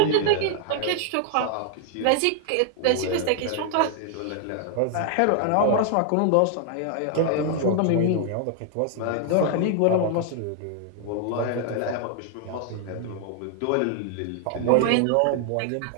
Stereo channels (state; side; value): different; both; correlation 0.00